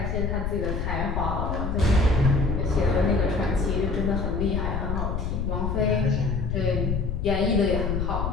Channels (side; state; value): left; noise; rumble, 1 dB below the sound